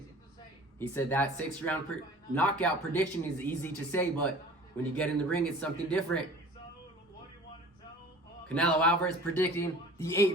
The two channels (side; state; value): both; normal; correlation 0.44